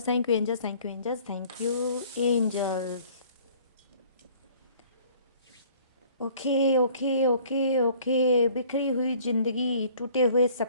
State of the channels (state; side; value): inverted; both; correlation -0.54